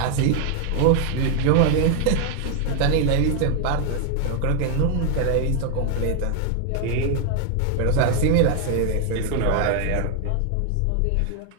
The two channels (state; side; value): different; both; correlation 0.00